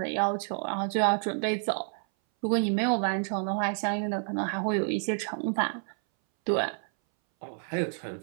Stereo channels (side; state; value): left; silent; 58 dB below the other